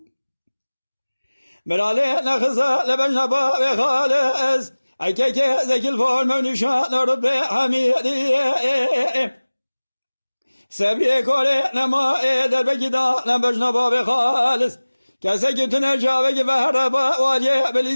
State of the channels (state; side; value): inverted; both; correlation -1.00